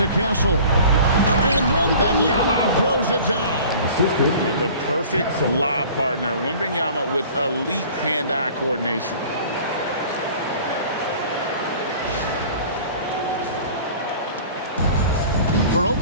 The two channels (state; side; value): inverted; both; correlation -0.45